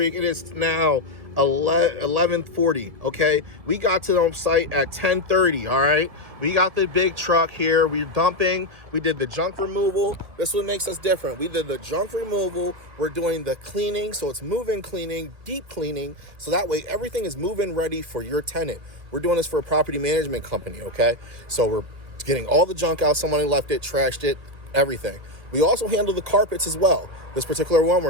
It is now 11:40, okay? We got to the site at 10:30, all right? We got the big truck here. We're dumping. We did the junk removal. This is what makes us different. We did the junk removal. We're doing the cleaning, so it's move-in cleaning, deep cleaning, so that way everything is move-in ready for your tenant. We're doing this for a property management company, okay? So we're getting all the junk out. Someone left it, trashed it, everything. We also handle the carpets as well. This particular one, we're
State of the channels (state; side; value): late; left; 1.7 ms